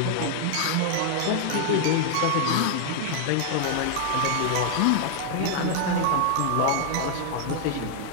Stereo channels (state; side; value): different; both; correlation 0.00